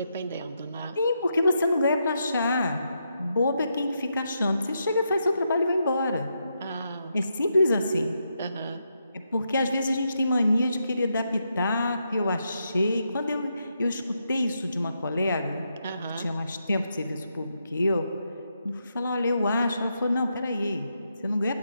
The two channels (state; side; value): inverted; both; correlation -0.82